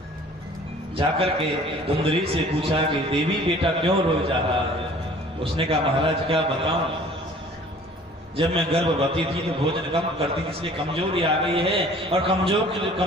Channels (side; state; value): both; normal; correlation 0.50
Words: जाकर के धुंधली से पूछा कि देवी बेटा क्यों रो जा रहा है? उसने कहा महाराज क्या बताऊं, जब मैं गर्भवती थी तो भोजन कम करती थी इसलिए कमजोरी आ गई है और